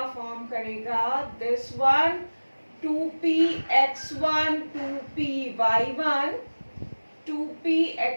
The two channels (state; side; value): inverted; both; correlation -1.00